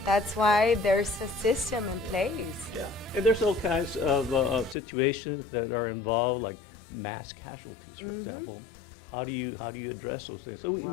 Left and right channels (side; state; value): right; drops out; at 4.8 s